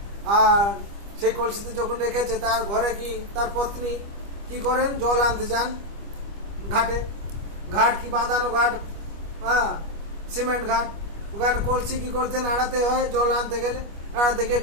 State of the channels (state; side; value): late; left; 25 ms